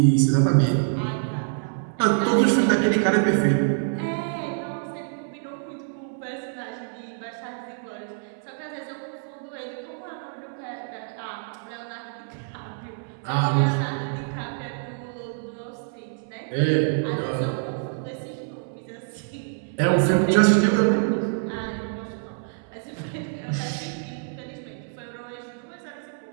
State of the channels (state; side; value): silent; left; 61 dB below the other